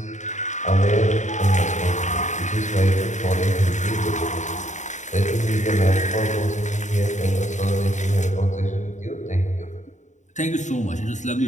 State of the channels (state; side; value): late; right; 0.35 ms